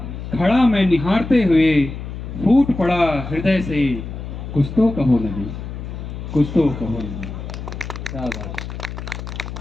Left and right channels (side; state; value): left; noise; hum, 8 dB below the sound